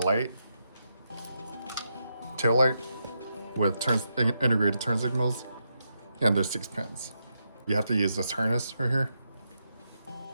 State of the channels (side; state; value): both; inverted; correlation -0.83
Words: tail light with integrated turn signals, and there's 6 pins. You have to use this harness right here.